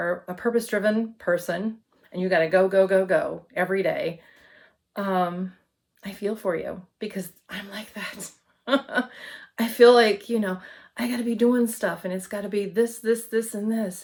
a purpose-driven person and you got to go, go, go, go every day. Um, I feel for you because I'm like that. I feel like, I got to be doing stuff and it's got to be this, this, this, and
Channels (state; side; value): identical; both; correlation 1.00